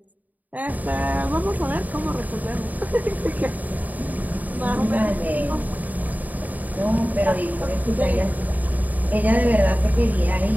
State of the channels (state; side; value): late; left; 0.079 ms